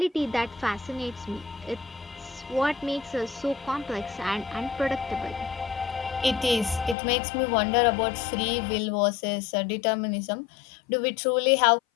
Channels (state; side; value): drops out; right; at 7.0 s